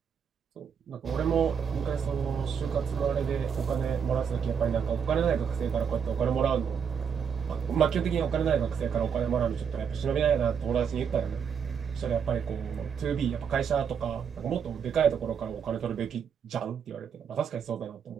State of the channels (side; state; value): left; quieter; 7.1 dB